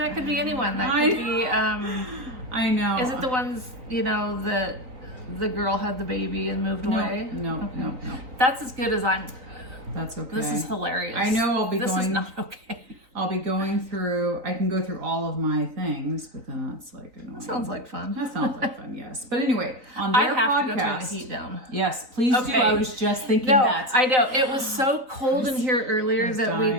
could be anyone. That could be... I know. Is it the ones, that the girl had the baby and moved away? No, Okay. no. That's as good as I'm... That's okay. This is hilarious. I know I'll be This is not okay. I'll be going through... I can go through all of my things, but then that's like annoying. That sounds like fun. That sounds like fun, yes. But anyway, on their I have podcast... to go turn the heat down. Yes, please do. Okay. I was just thinking No, that. I know. It was so cold in here earlier that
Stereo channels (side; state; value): left; late; 3.9 ms